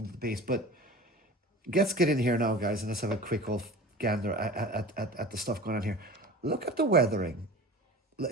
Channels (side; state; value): both; normal; correlation 0.38